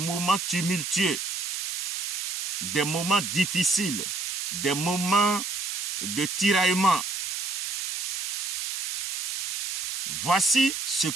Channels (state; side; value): noise; right; hiss, 3 dB below the sound